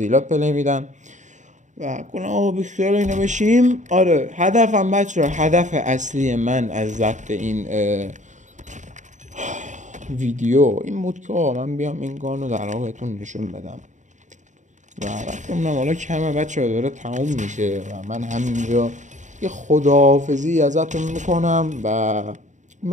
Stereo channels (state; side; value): late; left; 0.35 ms